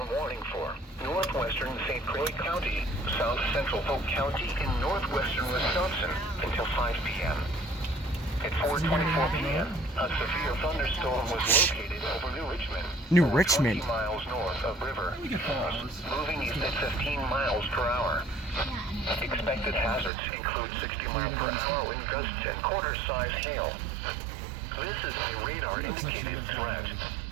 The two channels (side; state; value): left; drops out; at 20.1 s